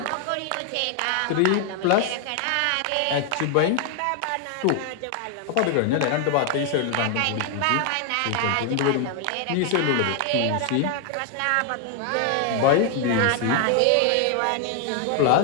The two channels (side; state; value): both; different; correlation 0.00